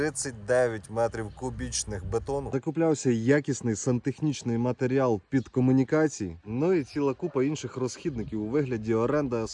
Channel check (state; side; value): identical; both; correlation 1.00